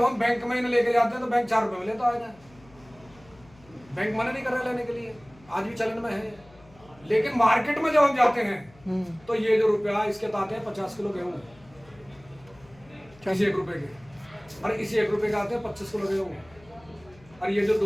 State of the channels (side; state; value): left; noise; hum, 26 dB below the sound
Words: हम बैंक में इन्हें लेके जाते हैं तो बैंक 4 रुपए में लेता है। बैंक मना नहीं कर रहा लेने के लिए, आज भी चलन में है। लेकिन मार्केट में जब हम जाते हैं तो ये जो रुपया इसके आते हैं 50 किलो गेहूं, इसी 1 रुपए के, और इसी 1 रुपए के आते हैं 25 किलो गेहूं, और ये जो